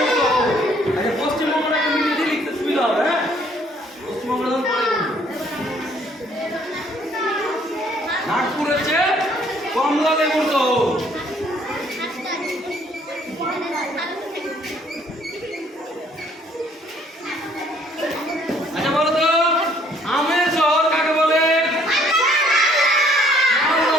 শহর। আচ্ছা, পশ্চিমবঙ্গটা একটু ইংরেজি লিখতে সুবিধা হবে। হ্যাঁ, পশ্চিমবঙ্গ নাগপুর হচ্ছে কমলা লেবুর শহর। আচ্ছা, বলো তো আমের শহর কাকে বলে? মালদা।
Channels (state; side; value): normal; both; correlation 0.62